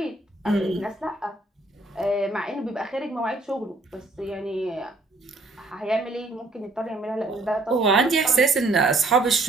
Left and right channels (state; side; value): quieter; left; 3.0 dB